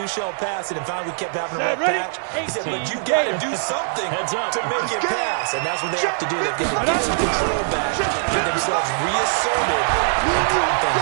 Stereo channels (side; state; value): left; silent; 64 dB below the other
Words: shall pass. And finally we kept having a rough patch. He said, but you got to do something to make it pass. And that's what they have to do. They've got to get some control back, get themselves reasserted, and calm